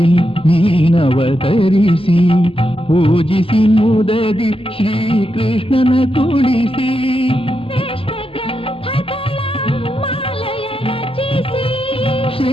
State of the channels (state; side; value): late; right; 0.26 ms